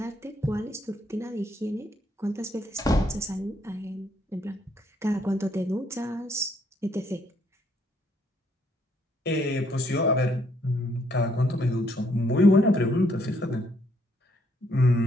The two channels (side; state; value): both; normal; correlation 0.70